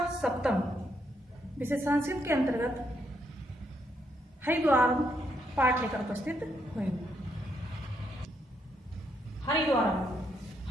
सप्तम विषय संस्कृत के अंतर्गत हरिद्वारम पाठ लेकर उपस्थित हुई हूँ।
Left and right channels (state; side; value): normal; both; correlation 0.76